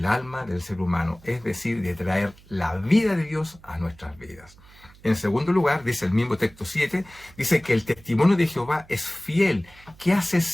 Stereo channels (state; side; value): noise; right; hum, 24 dB below the sound